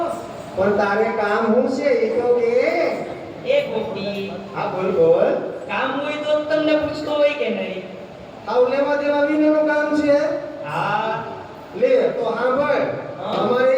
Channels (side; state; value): both; identical; correlation 1.00